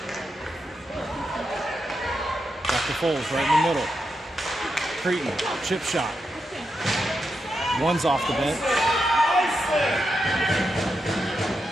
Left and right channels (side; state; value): both; normal; correlation 0.86